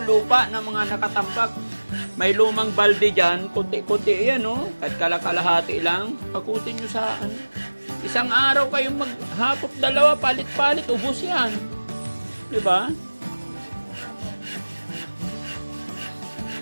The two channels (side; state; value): both; inverted; correlation -1.00